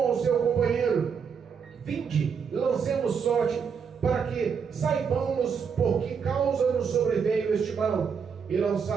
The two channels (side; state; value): left; quieter; 6.4 dB